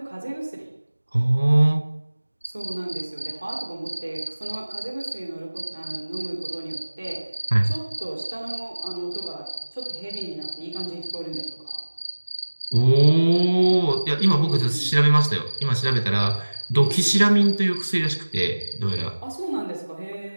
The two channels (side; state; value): both; inverted; correlation -1.00